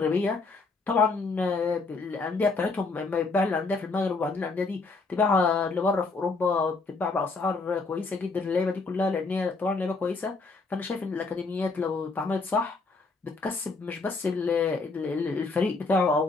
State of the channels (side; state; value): right; quieter; 3.9 dB